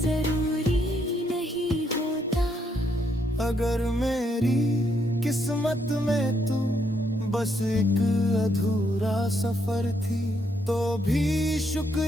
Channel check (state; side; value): normal; both; correlation 0.75